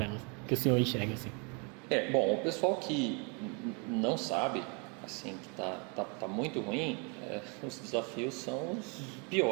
elas, que o senhor enxerga assim? Bom, o pessoal que não sabe, assim, que tá muito ruim, os desafios são os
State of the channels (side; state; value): left; quieter; 33.6 dB